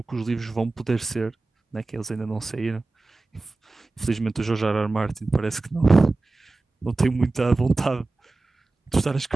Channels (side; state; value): left; quieter; 3.3 dB